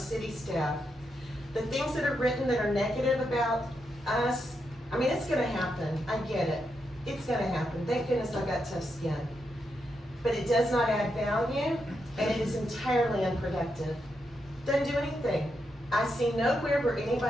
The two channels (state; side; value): normal; both; correlation 0.83